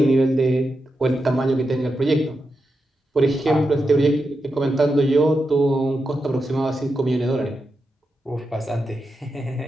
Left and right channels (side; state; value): both; normal; correlation 0.88